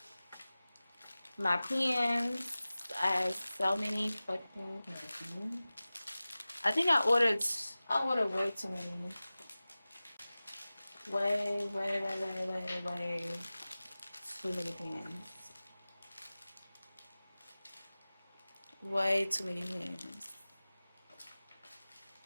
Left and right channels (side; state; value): both; inverted; correlation -0.97